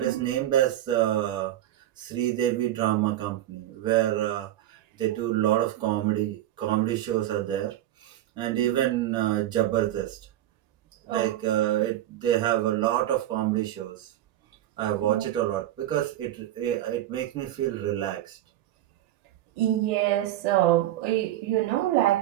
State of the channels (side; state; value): left; quieter; 13.4 dB